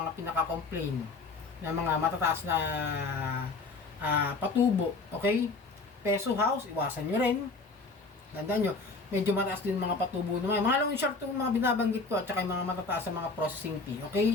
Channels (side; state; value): right; quieter; 3.9 dB